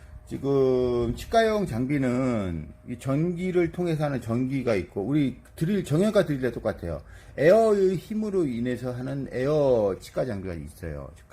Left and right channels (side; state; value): both; identical; correlation 1.00